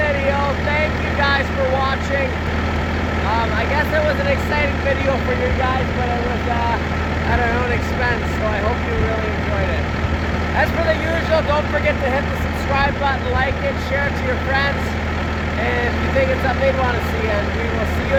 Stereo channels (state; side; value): identical; both; correlation 1.00